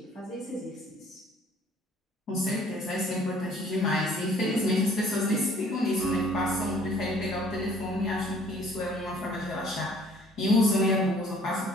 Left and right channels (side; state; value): both; normal; correlation 0.56